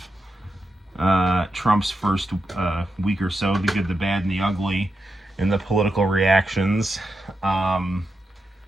Trump's first week or so, the good, the bad, and the ugly, and the political reactions.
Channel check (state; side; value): normal; both; correlation 0.86